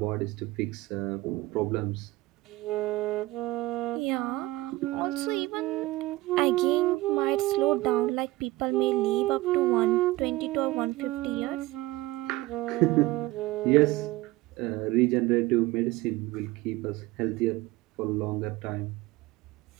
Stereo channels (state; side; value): quieter; left; 18.8 dB